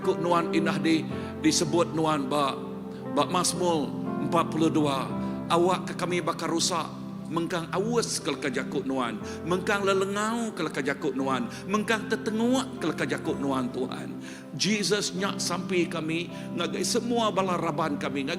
nuan indah disebut nuan bak Mazmur 42, awak ke kami bakar rusak, mengkang awas ke leka jakut nuan, mengkang lelengau ke leka jakut nuan, mengkang tertenguak ke leka jakut nuan Tuhan. Jesus nyak sampai kami, ngagai semua balaraban kami,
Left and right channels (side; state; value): both; identical; correlation 1.00